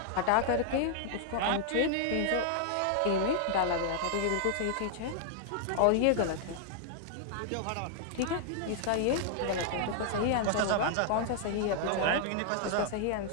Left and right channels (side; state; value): both; different; correlation -0.01